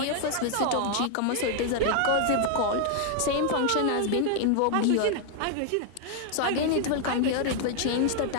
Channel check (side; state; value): both; different; correlation 0.00